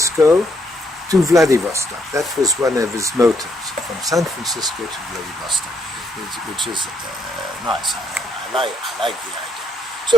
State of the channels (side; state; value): both; normal; correlation 0.73